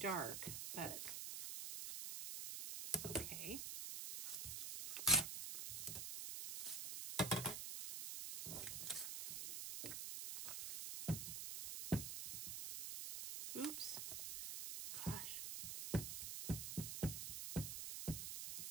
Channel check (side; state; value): right; noise; hiss, 3 dB below the sound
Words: but it's okay. Oops. Gosh.